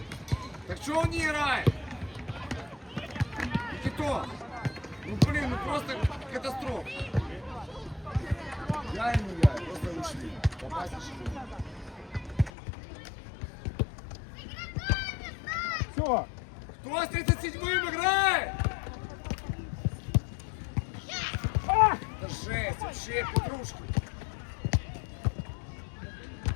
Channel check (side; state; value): right; drops out; at 12.5 s